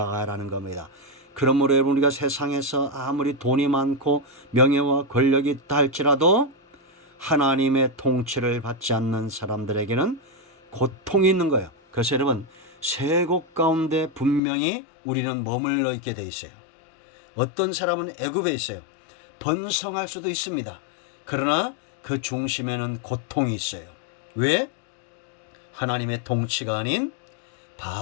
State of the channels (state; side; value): drops out; right; at 14.4 s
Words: 겁니다. 그러므로 여러분, 우리가 세상에서 아무리 돈이 많고 명예와 권력이 있다 할지라도 하나님의 통치를 받지 않는 사람들에게는 고통이 있는 거예요. 그래서 여러분, 세 곳 가운데 분명히 우리는 머물러 있게 돼 있어요. 어떤 사람은 애굽에 있어요. 번성할 수도 있습니다. 그러나 그 중심에는 고통이 있어요. 왜? 하나님의 통치가 아닌